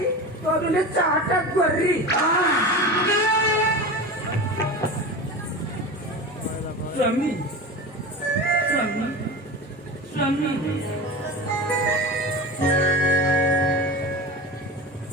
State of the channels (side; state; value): both; normal; correlation 0.29